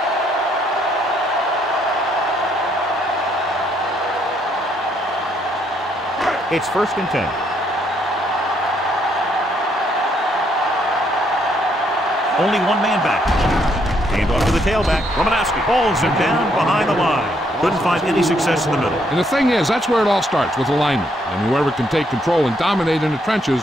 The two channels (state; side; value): normal; both; correlation 0.72